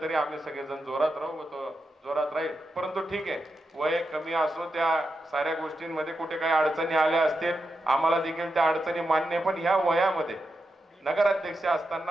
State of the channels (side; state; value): both; normal; correlation 0.87